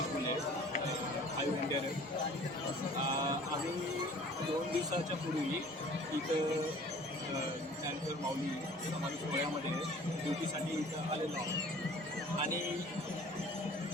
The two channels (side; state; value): both; normal; correlation 0.49